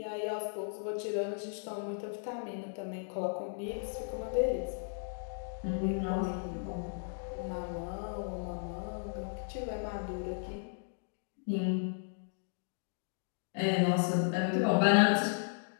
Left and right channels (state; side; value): silent; right; digital silence